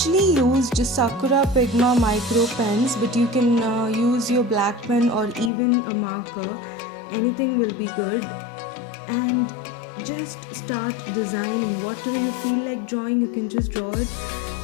used Sakura Pigma micro pens, but you can use your black pen or even a marker. Anything will be good. And just start designing. Whatever you feel like drawing, you can just draw it.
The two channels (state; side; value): drops out; right; at 5.5 s